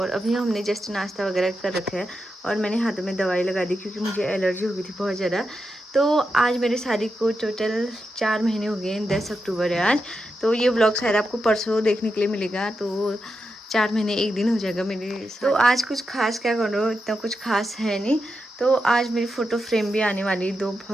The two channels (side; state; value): both; normal; correlation 0.87